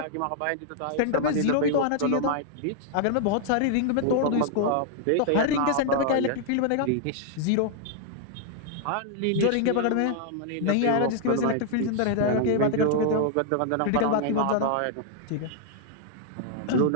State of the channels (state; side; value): different; both; correlation -0.01